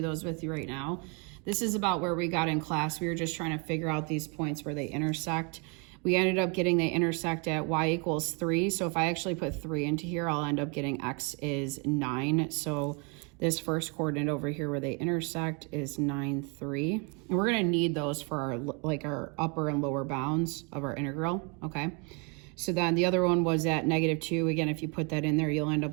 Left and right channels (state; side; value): quieter; left; 33.6 dB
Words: those with you right now. This is about where we got in class. We were just trying to figure out these points where they intersect. We ended up getting they intersect at y equals 3, so if I actually put 3 into here, I'll end up getting x is 9. So this first coordinate over here where they intersect is 9, 3. And we're going to need those for our upper and lower bounds of our integral, okay? So then the other one was at -2. Again, if you put that in there, you'll end